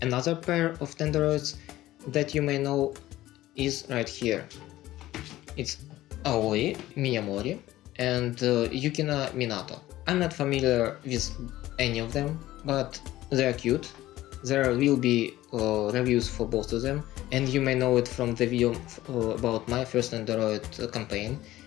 Another pair of Nendoroids that you may know is right here. It's Aoi Miyamori and Yukina Minato. I'm not familiar with any of them, but they're cute. There will be reviews for both of them, and you may know it from the video about my first Nendoroid campaign,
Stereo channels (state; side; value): quieter; right; 15.6 dB